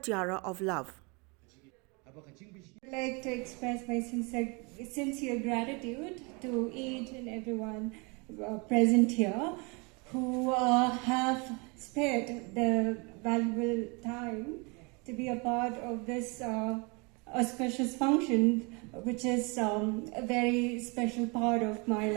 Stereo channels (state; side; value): quieter; left; 30.3 dB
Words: of Love. I'd like to express my sincere gratitude to each and everyone present here who have spared the valuable time to be a part of this auspicious function, which is a very special part of my